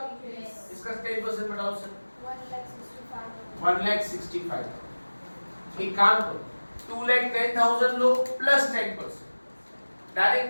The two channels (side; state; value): both; inverted; correlation -1.00